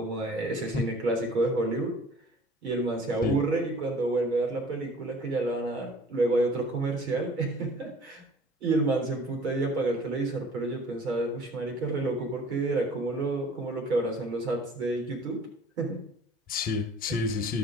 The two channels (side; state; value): both; normal; correlation 0.49